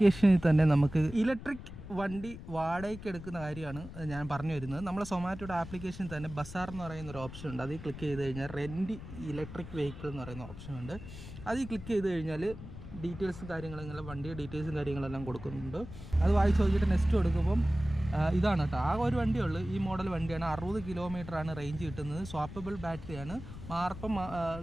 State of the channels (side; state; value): left; noise; rumble, 12 dB below the sound